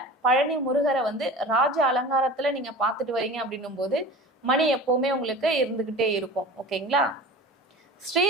பழனி முருகரை வந்து ராஜ அலங்காரத்துல நீங்க பார்த்துட்டு வரீங்க அப்படின்னும் போது மணி எப்பவுமே உங்களுக்கு இருந்துகிட்டே இருக்கும். ஓகேங்களா?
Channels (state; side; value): normal; both; correlation 0.36